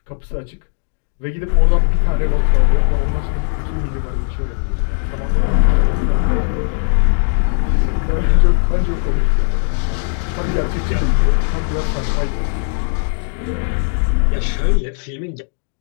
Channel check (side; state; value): right; silent; 66 dB below the other